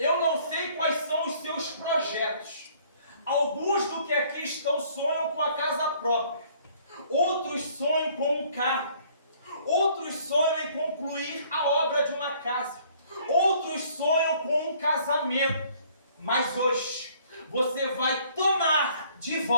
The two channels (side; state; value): both; inverted; correlation -0.59